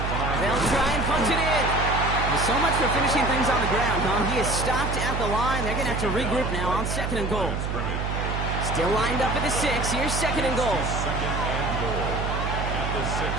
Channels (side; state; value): right; noise; hum, 2 dB below the sound